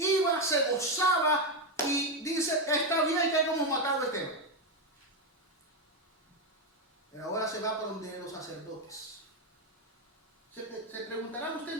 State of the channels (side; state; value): both; normal; correlation 0.08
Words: se gozaba y dice, está bien que hayamos matado a Esteban. Pero ahora se va por donde los sacerdotes. Se preguntará usted,